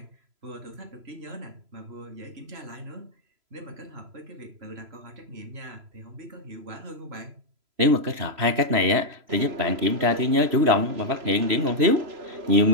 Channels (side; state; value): left; late; 3.0 ms